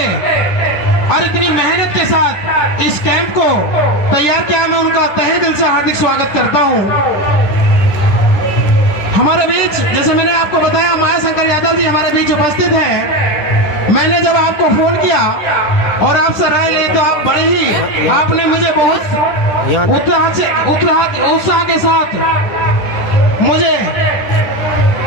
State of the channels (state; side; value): late; right; 10 ms